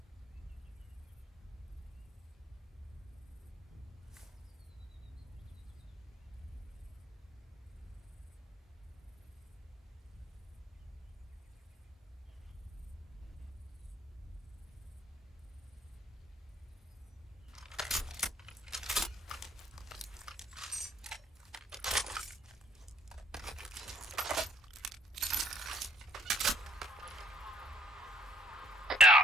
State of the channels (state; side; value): normal; both; correlation 0.63